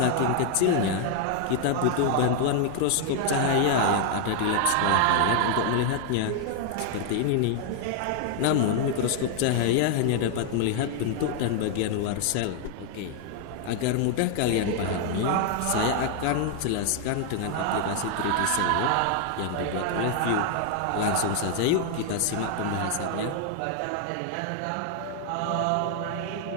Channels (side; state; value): both; different; correlation 0.00